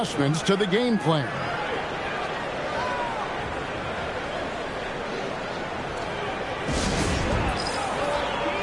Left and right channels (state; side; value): identical; both; correlation 1.00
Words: to the game plan.